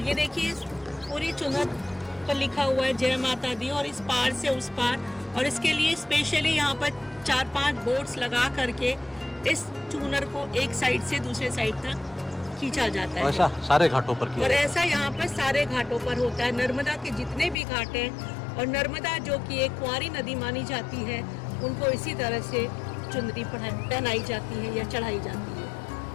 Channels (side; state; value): right; drops out; at 17.6 s